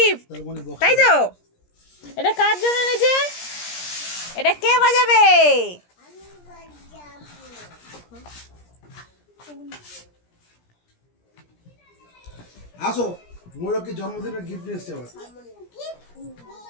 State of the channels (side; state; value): right; late; 17 ms